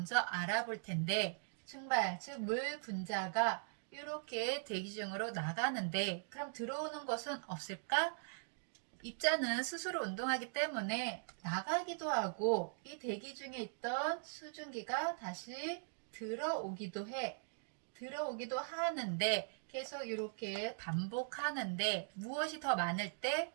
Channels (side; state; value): left; silent; digital silence